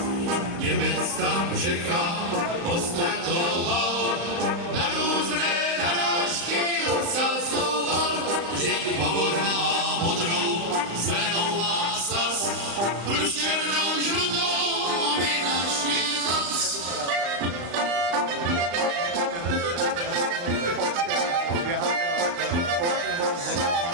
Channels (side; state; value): left; late; 35 ms